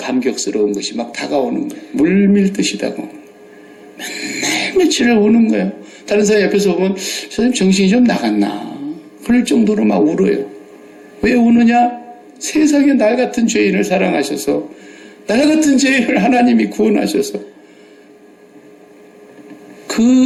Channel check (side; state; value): both; identical; correlation 1.00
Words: 것이 막 다가오는 거예요. 물밀듯이 다가오는 거예요. 맨날 며칠을 오는 거예요. 다른 사람 옆에서 보면 선생님 정신이 좀 나갔나 그럴 정도로 막 울어요. 왜 우느냐? 세상에 날 같은 죄인을 사랑하셔서 날 같은 죄인을 하나님이 구원하셔서